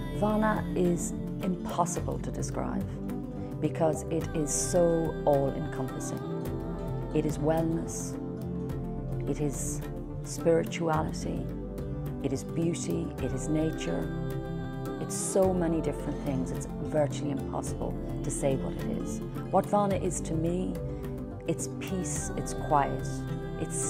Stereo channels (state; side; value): identical; both; correlation 1.00